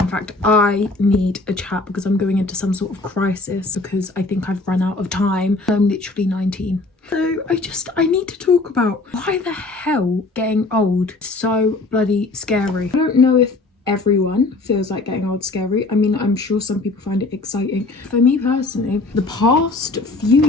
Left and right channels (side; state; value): right; quieter; 3.3 dB